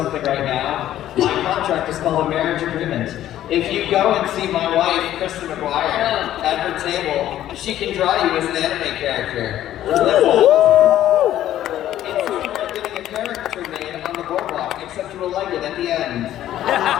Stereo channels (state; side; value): quieter; right; 12.5 dB